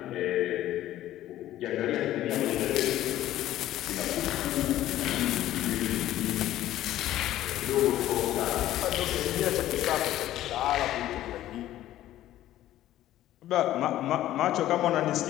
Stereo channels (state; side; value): quieter; right; 13.7 dB